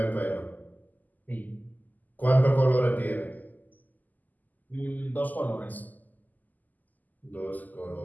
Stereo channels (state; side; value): late; right; 0.082 ms